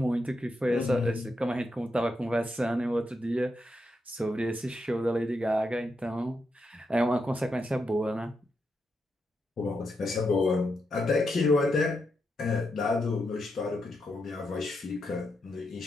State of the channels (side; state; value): both; normal; correlation 0.83